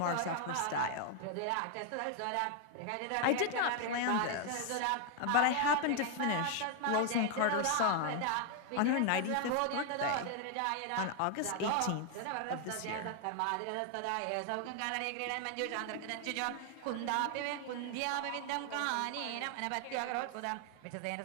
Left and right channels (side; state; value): both; different; correlation 0.00